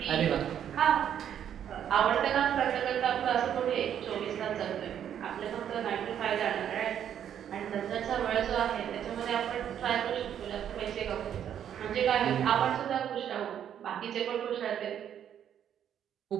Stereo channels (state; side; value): quieter; left; 9.5 dB